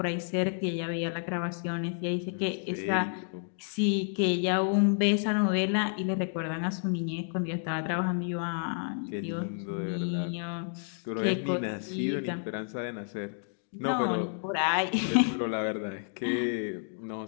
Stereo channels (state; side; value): silent; right; 58 dB below the other